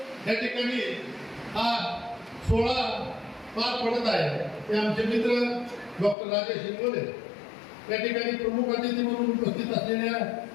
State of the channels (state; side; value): drops out; right; at 6.2 s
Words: या ठिकाणी हा सोहळा पार पडत आहे ते आमचे मित्र डॉक्टर राजेश इंगोले, या ठिकाणी प्रमुख अतिथी म्हणून उपस्थित असलेल्या